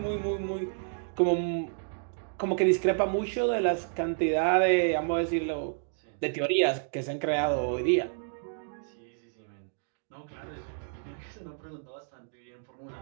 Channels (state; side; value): silent; left; digital silence